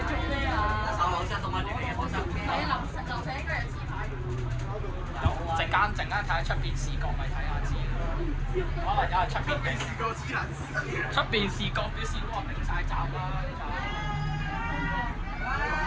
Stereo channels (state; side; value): identical; both; correlation 1.00